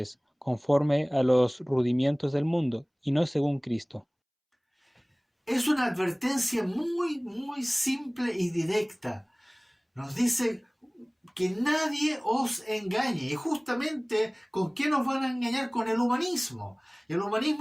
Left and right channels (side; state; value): both; identical; correlation 1.00